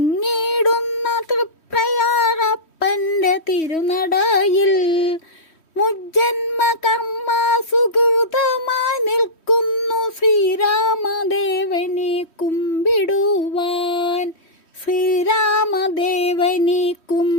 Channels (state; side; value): late; right; 3.1 ms